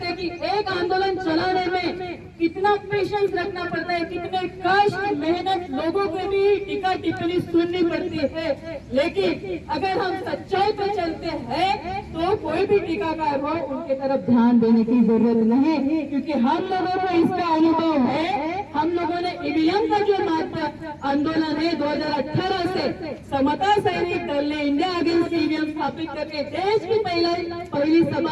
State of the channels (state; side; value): identical; both; correlation 1.00